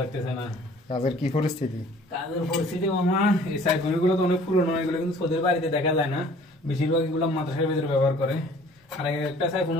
না। কাজের কি পরিস্থিতি? কাজের পরিস্থিতি মামা, এই সাইফোনগুলো তো অনেক পুরনো, এগুলো কিন্তু সোদের বাড়িতে দেখা যায় না, বেশিরভাগ এগুলো মাদ্রাসার ভিতরে ব্যবহার করে। আর একটা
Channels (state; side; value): normal; both; correlation 0.53